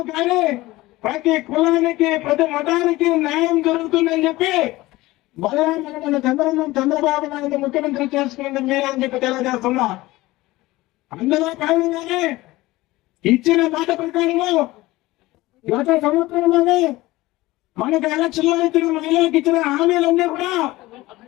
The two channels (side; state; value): right; quieter; 18.9 dB